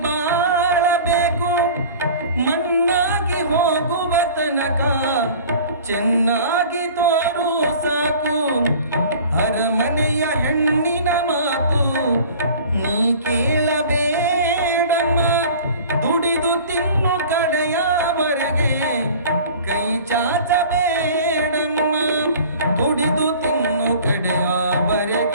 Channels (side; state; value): both; inverted; correlation -0.44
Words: ಬಾಳಬೇಕು, ಮಣ್ಣಾಗಿ ಹೋಗುವ ತನಕ ಚೆನ್ನಾಗಿ ತೋರು ಸಾಕು. ಅರಮನೆಯ ಹೆಣ್ಣಿನ ಮಾತು ನೀ ಕೇಳಬೇಡಮ್ಮ, ದುಡಿದು ತಿನ್ನು ಕಡೆಯವರೆಗೆ ಕೈ ಚಾಚಬೇಡಮ್ಮ, ದುಡಿದು ತಿನ್ನು